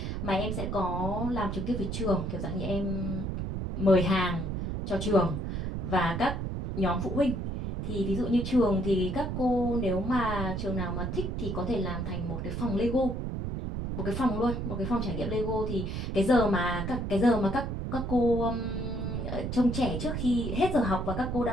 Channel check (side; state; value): right; noise; rumble, 3 dB below the sound